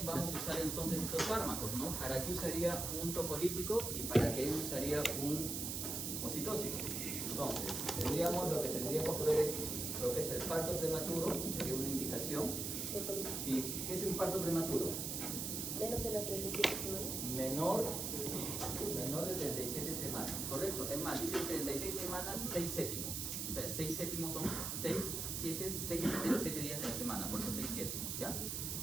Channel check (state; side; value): noise; right; hiss, 2 dB below the sound